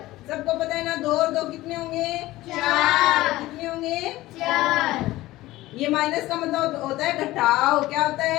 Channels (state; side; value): quieter; right; 17.3 dB